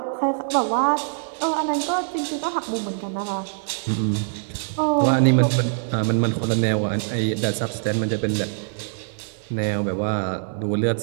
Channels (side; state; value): left; silent; digital silence